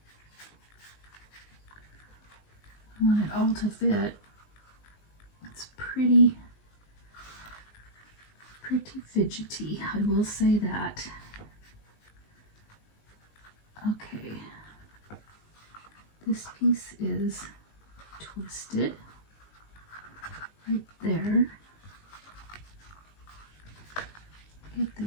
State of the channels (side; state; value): right; late; 19 ms